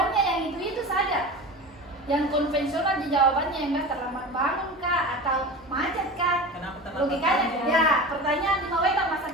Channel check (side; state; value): both; normal; correlation 0.31